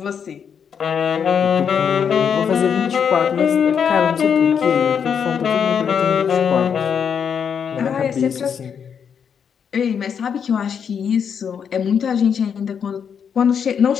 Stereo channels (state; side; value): quieter; right; 7.3 dB